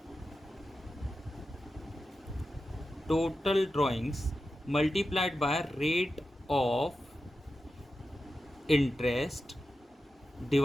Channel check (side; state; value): both; normal; correlation 0.91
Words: drawings multiplied by rate of interest